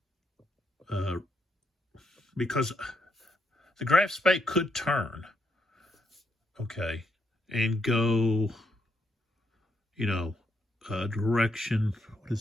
because the graph spay could turn, okay, and go, you know, direction, what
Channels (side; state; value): both; normal; correlation 0.78